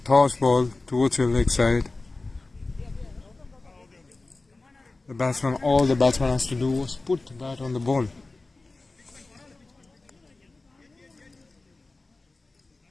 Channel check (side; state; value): right; quieter; 3.3 dB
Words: ball towards your leg side. All the batsman has to do was put the bat on the ball.